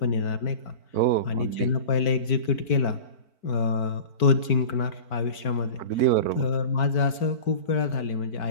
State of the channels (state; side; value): late; right; 4.5 ms